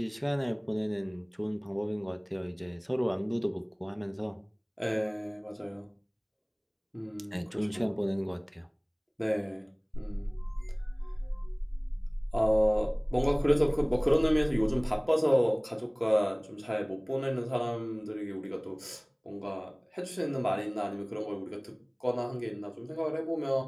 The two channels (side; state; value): both; identical; correlation 1.00